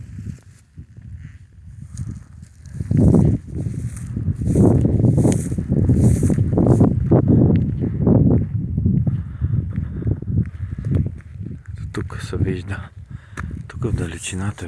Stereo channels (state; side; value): identical; both; correlation 1.00